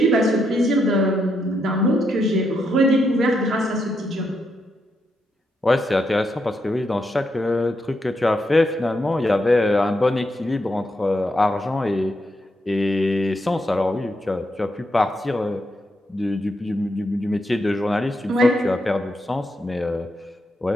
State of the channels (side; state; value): both; normal; correlation 0.81